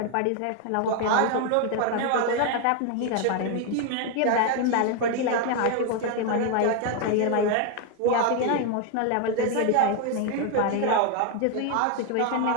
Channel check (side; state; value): both; different; correlation 0.01